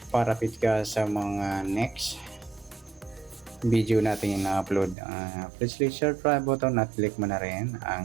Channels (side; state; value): left; drops out; at 5.0 s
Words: Para fit ka sa mga next video natin na-upload. Please click subscribe button at click mo na rin